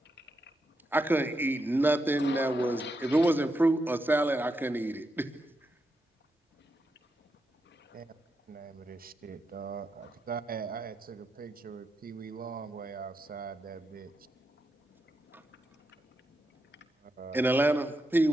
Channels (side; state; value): both; normal; correlation 0.84